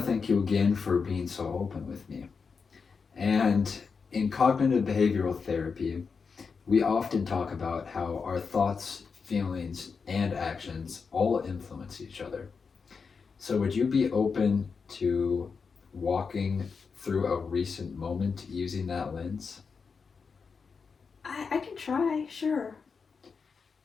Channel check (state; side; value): quieter; right; 5.4 dB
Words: thank you again for being so open with me. And in cognitive behavioral therapy, we often talk about how our thoughts, feelings, and actions all influence each other. So, would you be open to walking through a recent moment using that lens? I can try, sure.